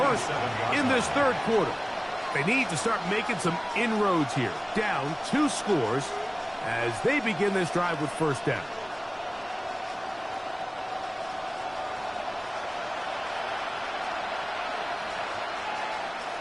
in this third quarter. They need to start making some inroads here. Down 2 scores as they begin this drive with first down.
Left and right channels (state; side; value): identical; both; correlation 1.00